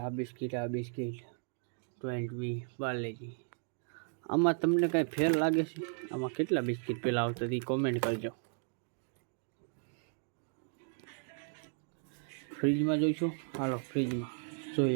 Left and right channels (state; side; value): silent; left; 54 dB below the other